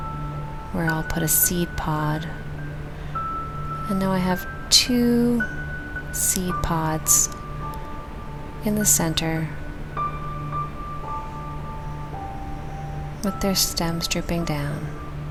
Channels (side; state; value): both; identical; correlation 1.00